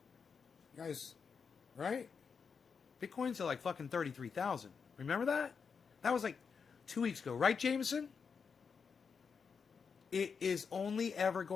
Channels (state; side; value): quieter; right; 5.9 dB